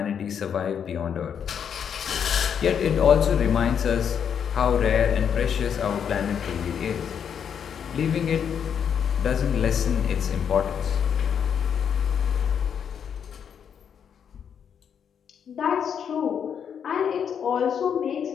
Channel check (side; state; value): right; quieter; 7.9 dB